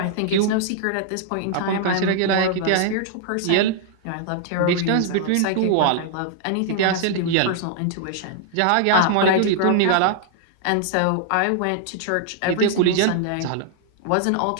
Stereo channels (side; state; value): both; different; correlation -0.01